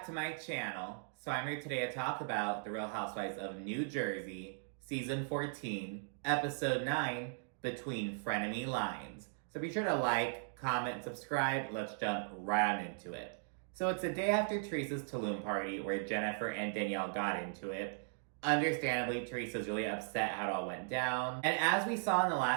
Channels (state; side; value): silent; left; digital silence